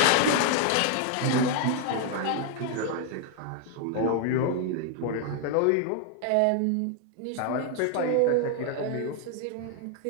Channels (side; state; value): both; different; correlation 0.00